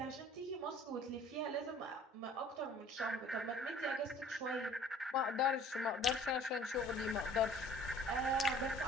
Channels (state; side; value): normal; both; correlation 0.51